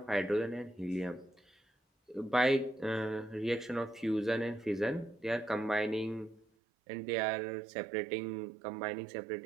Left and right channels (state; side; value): drops out; left; at 6.5 s